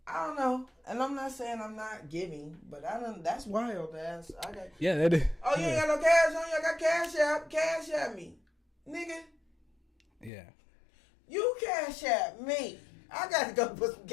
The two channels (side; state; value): right; drops out; at 10.3 s